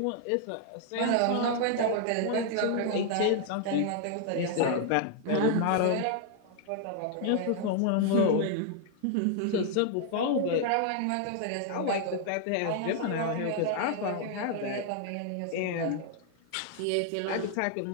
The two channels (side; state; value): both; different; correlation 0.00